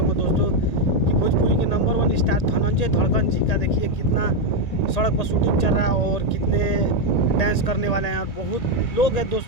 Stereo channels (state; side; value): late; right; 1.9 ms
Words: दोस्तों कि भोजपुरी के नंबर 1 स्टार धनंजय धड़कन जी का देखिए कितना सड़क पर शूटिंग चल रहा है और कितने डांस करने वाले हैं। और बहुत लोग हैं